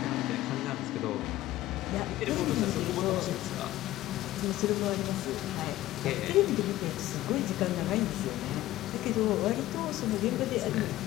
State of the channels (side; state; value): right; quieter; 15.5 dB